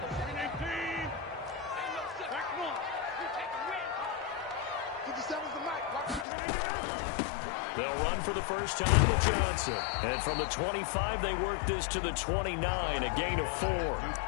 They'll run for the first time with Johnson. And from the 25, they work this to the 29, a gain of 4.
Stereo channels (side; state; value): right; drops out; at 6.2 s